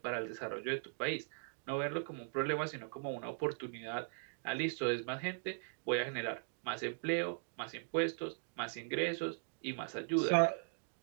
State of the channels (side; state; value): left; silent; digital silence